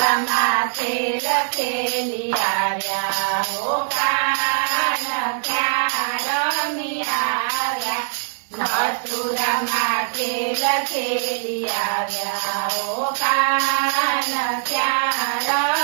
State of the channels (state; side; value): silent; left; digital silence